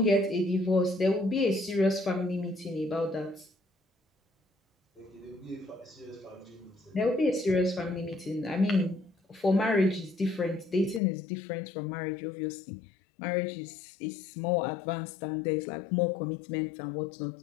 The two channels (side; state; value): right; drops out; at 11.0 s